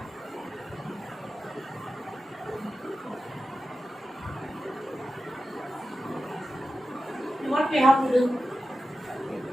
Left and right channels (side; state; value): both; normal; correlation 0.92